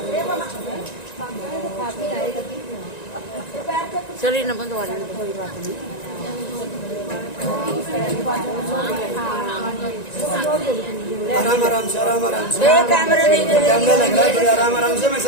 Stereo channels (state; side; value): late; right; 1.9 ms